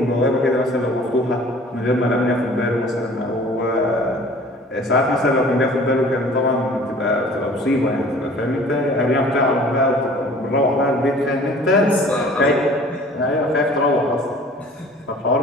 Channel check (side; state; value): both; normal; correlation 0.49